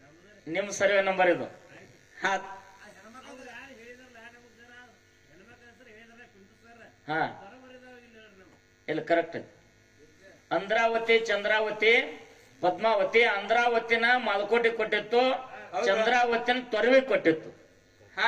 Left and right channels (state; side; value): identical; both; correlation 1.00